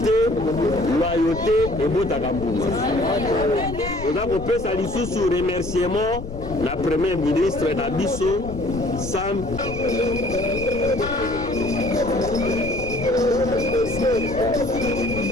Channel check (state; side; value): noise; left; rumble, 11 dB below the sound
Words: loyauté et botaka mbuma. Oza kopesa lisusu remerciement na premier ministre na biso Sam